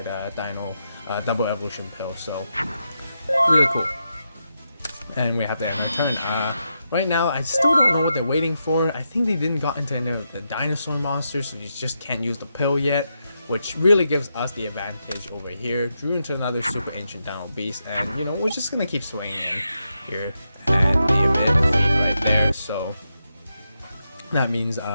Dino double evolution pill. So really cool. And we have to end our turn. Right now, I still don't know what they're waiting for. I think they didn't got into any of the dinosaur monsters, so you just can't use the pill yet, which really gives us the advantage over here. Drew into another Super Ancient Dino Beast, and we're just gonna keep swinging in here and be a bit defeat right there. So that means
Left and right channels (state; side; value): inverted; both; correlation -0.85